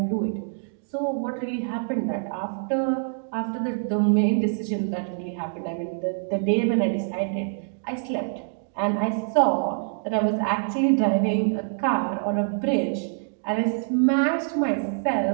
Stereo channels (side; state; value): left; silent; digital silence